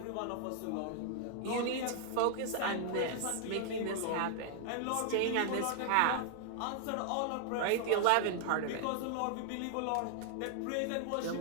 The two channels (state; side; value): different; both; correlation -0.01